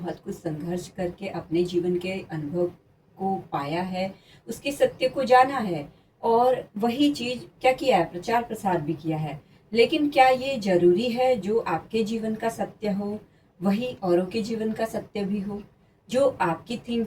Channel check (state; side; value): identical; both; correlation 1.00